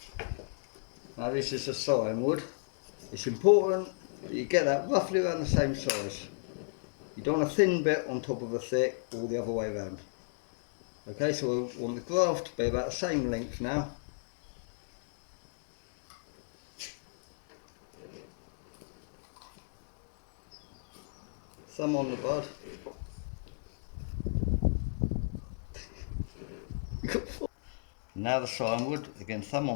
Now this is a cyan wood. It's important that you get that roughly around the same size. You don't want a thin bit on top of a thick or the other way around. Okay, so we want the graft to be about the same length now. Thumb on the bud. Now the cyan wood, again thumb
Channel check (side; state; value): right; silent; digital silence